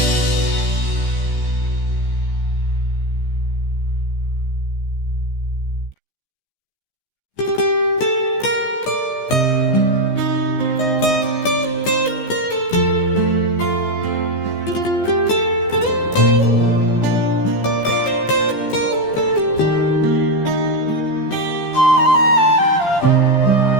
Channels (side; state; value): right; late; 14 ms